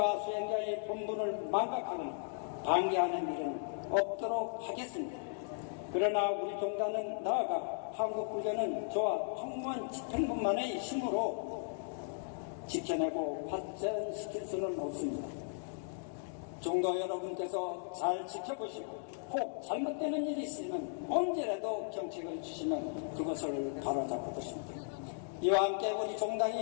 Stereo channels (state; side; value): silent; right; digital silence